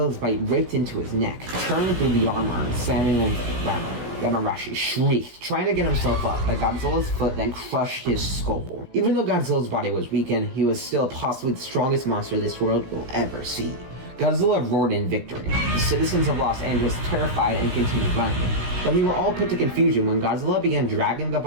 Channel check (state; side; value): late; left; 16 ms